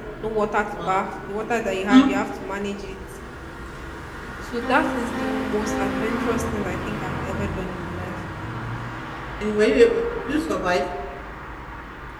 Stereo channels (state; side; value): identical; both; correlation 1.00